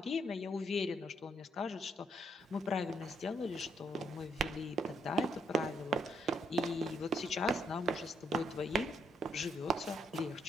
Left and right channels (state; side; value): normal; both; correlation 0.73